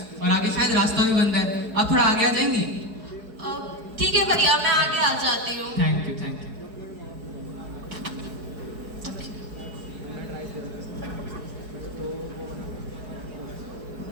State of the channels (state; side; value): late; left; 4.7 ms